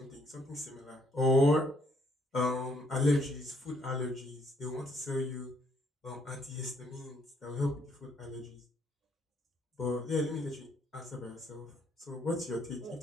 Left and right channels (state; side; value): normal; both; correlation 0.69